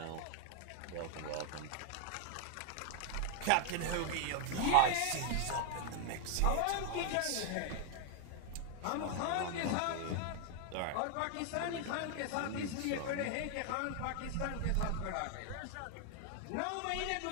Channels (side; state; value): both; different; correlation 0.00